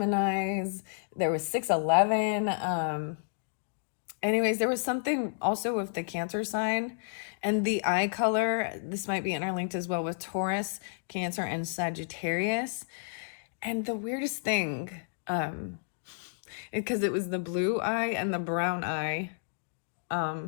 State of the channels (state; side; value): silent; right; digital silence